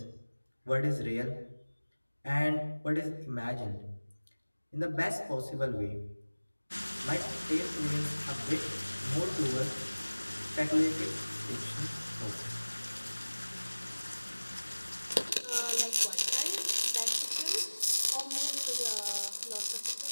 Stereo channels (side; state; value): both; inverted; correlation -1.00